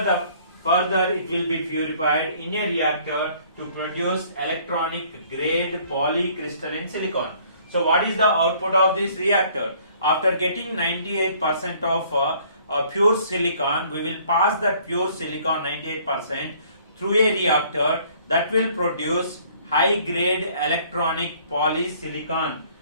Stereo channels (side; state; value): both; inverted; correlation -0.58